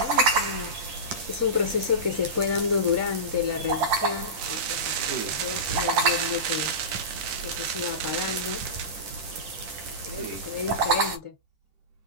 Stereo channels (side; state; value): left; late; 10 ms